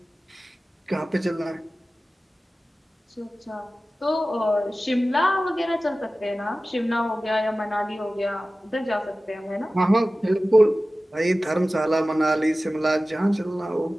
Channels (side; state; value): both; normal; correlation 0.96